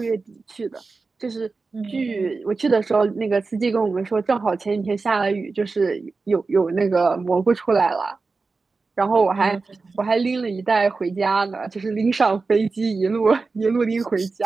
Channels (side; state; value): left; quieter; 4.1 dB